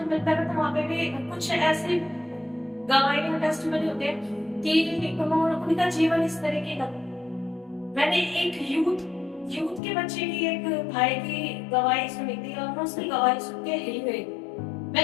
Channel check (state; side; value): drops out; right; at 9.8 s